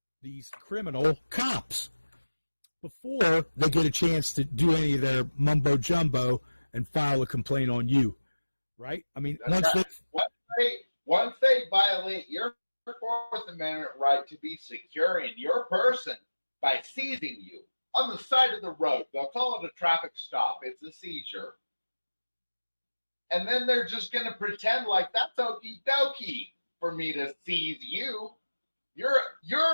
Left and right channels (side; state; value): both; inverted; correlation -1.00